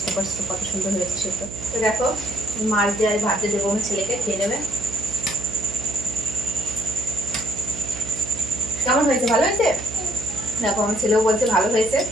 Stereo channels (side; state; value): right; noise; hum, 12 dB below the sound